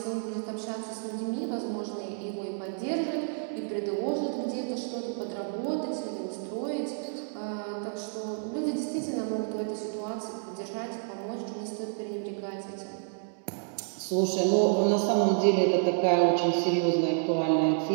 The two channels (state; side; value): silent; left; 58 dB below the other